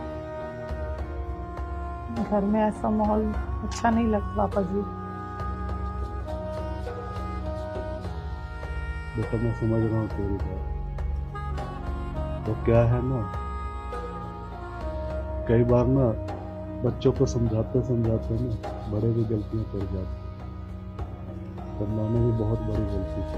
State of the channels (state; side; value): identical; both; correlation 1.00